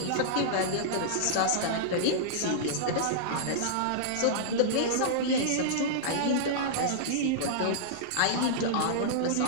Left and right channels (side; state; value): both; different; correlation -0.02